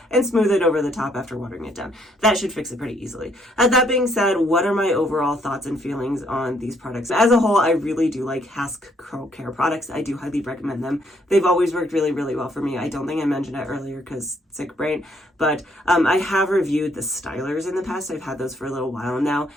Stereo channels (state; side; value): normal; both; correlation 0.69